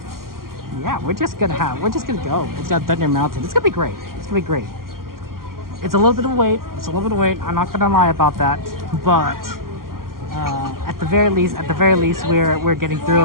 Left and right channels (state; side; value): late; left; 0.92 ms